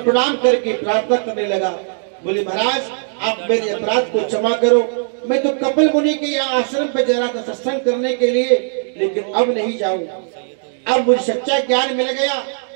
प्रणाम करके प्रार्थना करने लगा। बोले महाराज, आप मेरे अपराध को क्षमा करो। मैं तो कपिल मुनि के यहाँ आश्रम पे जा रहा था सत्संग करने के लिए, लेकिन अब नहीं जाऊं। अब मुझे सच्चा ज्ञान मिल गया,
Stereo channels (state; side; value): silent; left; digital silence